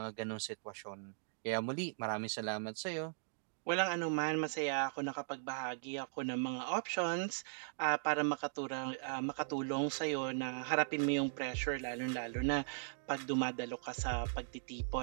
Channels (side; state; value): left; silent; digital silence